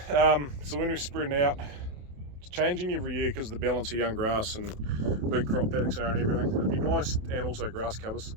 So when we're spreading out, it's changing every year because of the balance of young grass and big crop paddocks are and everything. It'd be nice, and also grass covers,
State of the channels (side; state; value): left; late; 28 ms